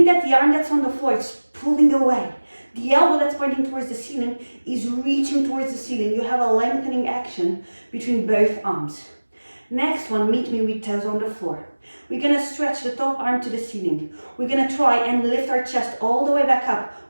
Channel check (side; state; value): both; inverted; correlation -1.00